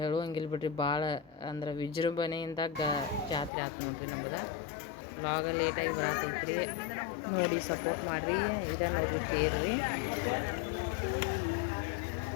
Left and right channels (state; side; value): drops out; right; at 3.5 s